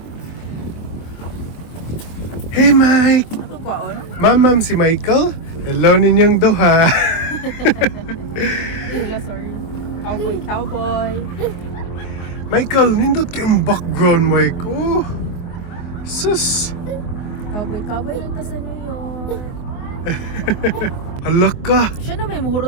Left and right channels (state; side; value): late; right; 24 ms